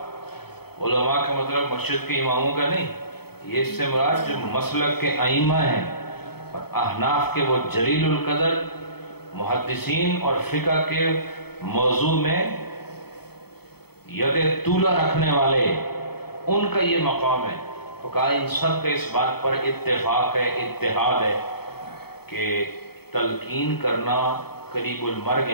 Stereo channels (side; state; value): right; late; 0.96 ms